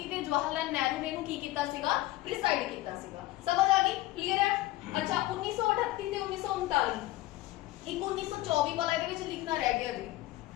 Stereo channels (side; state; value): right; quieter; 17.2 dB